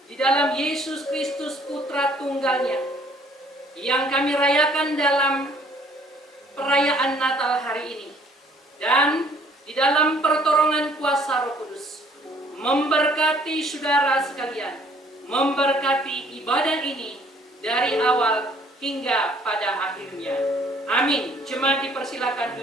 di dalam Yesus Kristus Putra Tunggalnya, yang kami rayakan dalam perayaan Natal hari ini, dan di dalam pertolongan kuasa Roh Kudus, memberkati saudara sekalian, memberkati ibadah ini dari awal hingga pada akhirnya. Amin. Jemaat dipersilakan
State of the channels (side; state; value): both; normal; correlation 0.59